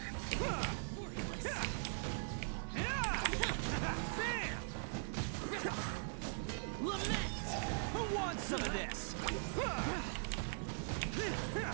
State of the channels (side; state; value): left; silent; digital silence